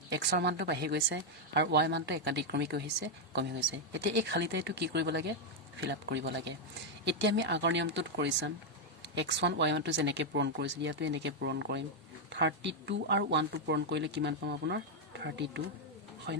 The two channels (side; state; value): both; normal; correlation 0.00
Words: x ৰ মানটো বাঢ়ি গৈছে আৰু y মানটো একাধিক্ৰমিক হৈছে কমি গৈছে এতিয়া এই খালি ঠাইটো কি কৰিব লাগে ফিল আপ কৰিব লাগে এতিয়া আমি আগৰ নিয়মটোত কৰিছাম x1 y1 টো যেনেকৈ পূৰণ কৰিছিল ইয়াতো এনেকৈ পূৰণ কৰিম 32 আৰু 1 টো পূৰণ কৰিলে কিমান পাম আপোনাৰ 32